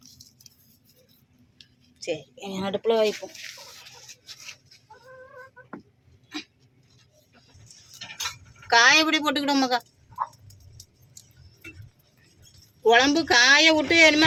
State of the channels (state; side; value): identical; both; correlation 1.00